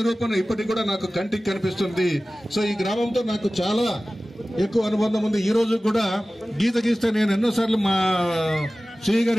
ఇప్పటికి కూడా నాకు కంటికి కనిపిస్తుంది. సో ఈ గ్రామంతో నాకు చాలా ఎక్కువ అనుబంధం ఉంది. ఈ రోజు కూడా గీత గీస్తే నేను ఎన్నోసార్లు మా శ్రీ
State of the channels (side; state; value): both; normal; correlation 0.97